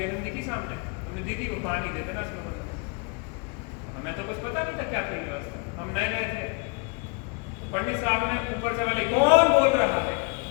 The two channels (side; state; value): right; quieter; 32.8 dB